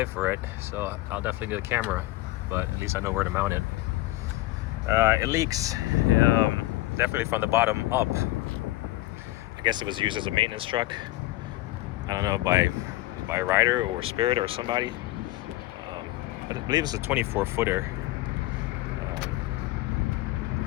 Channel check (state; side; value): quieter; right; 17.8 dB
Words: for it, so I'll definitely get a camera, but at least I know where to mount it. It leaks, definitely from the bottom up. I guess it was used as a maintenance truck. I don't know, by Ryder or Spirit or somebody. But I believe it's a 24-footer.